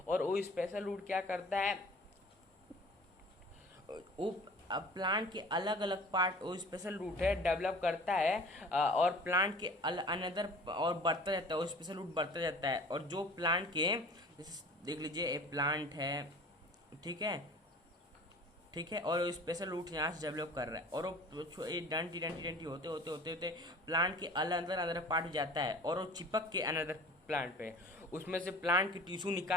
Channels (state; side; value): normal; both; correlation 0.44